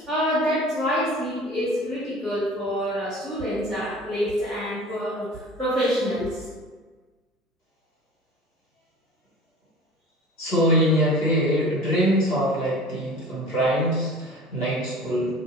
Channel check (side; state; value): both; normal; correlation 0.41